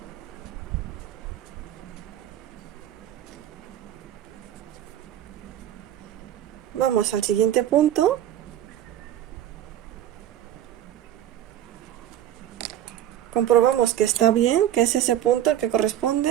Vamos al siguiente punto. Comprobamos que está bien, que es ese punto el que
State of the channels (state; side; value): quieter; left; 11.6 dB